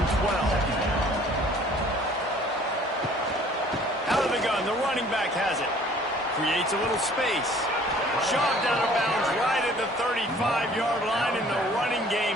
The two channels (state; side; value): normal; both; correlation 0.54